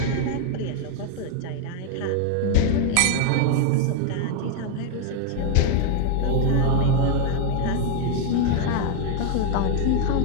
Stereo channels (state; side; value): different; both; correlation 0.00